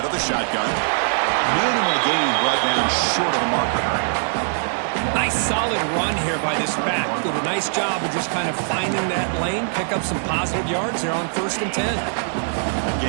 of the shotgun. Minimal gain brought down short of the marker. Nice solid run here by this back. Did a nice job of just kind of finding that lane, pick up some positive yards there on 1st and 10. That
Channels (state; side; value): silent; left; digital silence